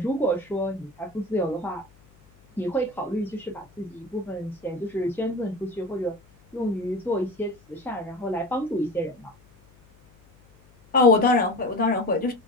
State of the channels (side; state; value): left; noise; hum, 28 dB below the sound